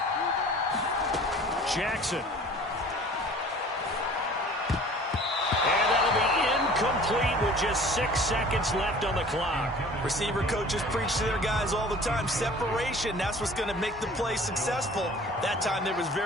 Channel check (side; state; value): both; normal; correlation 0.46